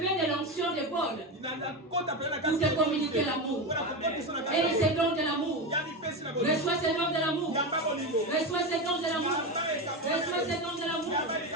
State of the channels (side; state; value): both; normal; correlation 0.18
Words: de l'onction de Paul pour te communiquer l'amour. Et ces dons de l'amour. Reçois ces dons de l'amour. Reçois ces dons de l'amour. Reçois ces dons de l'amour.